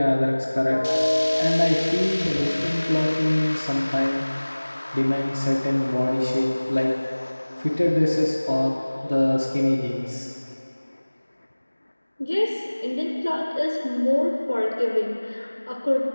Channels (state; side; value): inverted; both; correlation -1.00